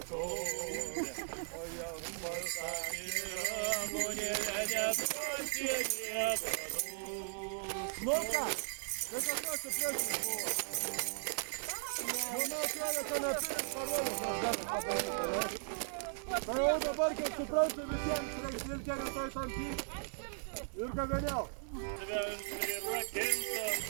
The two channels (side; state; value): left; silent; 53 dB below the other